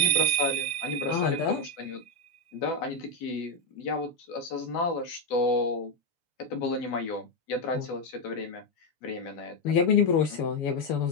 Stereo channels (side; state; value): right; late; 7.0 ms